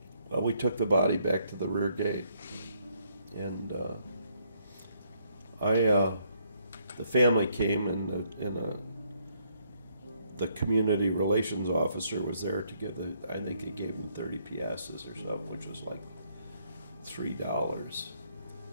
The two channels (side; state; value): both; inverted; correlation -0.71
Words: Well, we took the body back to the rear gate. And the family came, and the community relations officer was there to give I think he gave them 30 piastres or something, which was like $3,